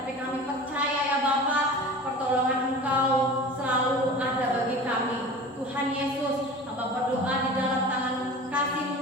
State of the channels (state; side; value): normal; both; correlation 0.36